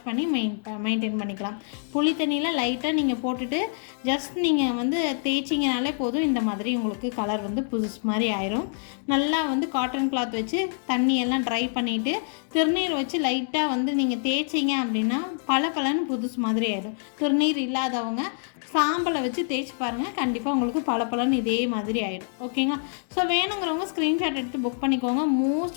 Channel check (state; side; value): silent; right; digital silence